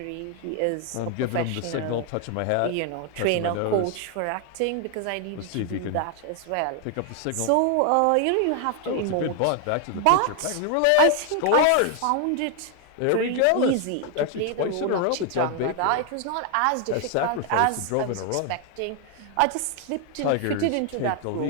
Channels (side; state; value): both; different; correlation 0.00